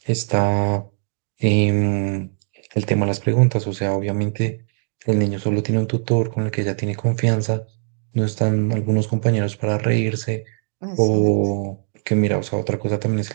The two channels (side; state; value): left; silent; digital silence